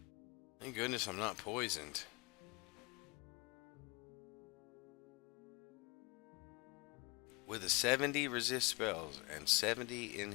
Thank goodness I'm not poisoned. With a 70 resist spells and 70 in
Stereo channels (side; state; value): right; quieter; 27.7 dB